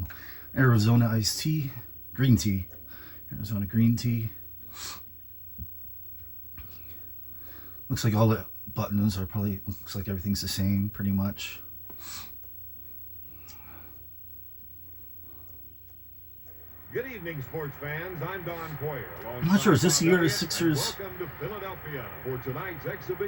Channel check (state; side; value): identical; both; correlation 1.00